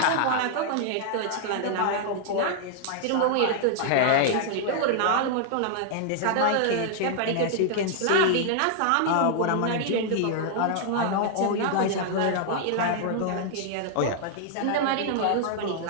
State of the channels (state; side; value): different; both; correlation -0.01